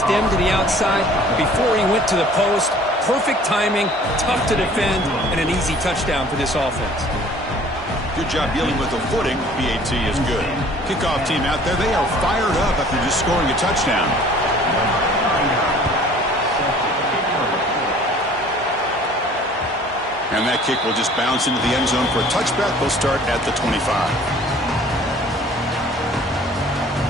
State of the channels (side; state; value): both; normal; correlation 0.51